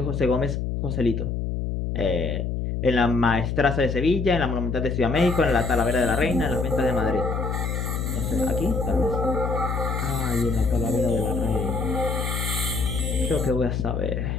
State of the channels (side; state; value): left; noise; hum, 2 dB below the sound